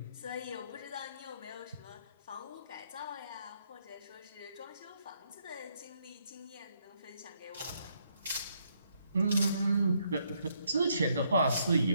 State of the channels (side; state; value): both; inverted; correlation -0.74